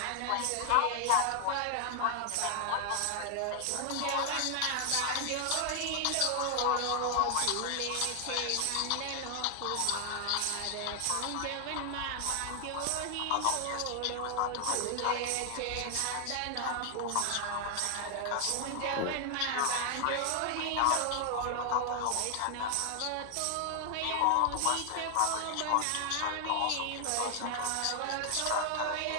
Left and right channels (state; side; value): different; both; correlation 0.00